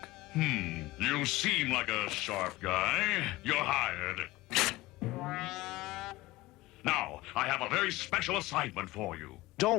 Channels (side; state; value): right; quieter; 19.0 dB